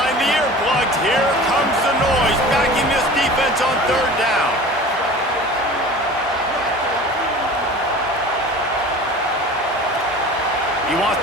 the earplugs. Here comes the noise, backing this defense on 3rd down. He wants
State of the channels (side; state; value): both; normal; correlation 0.39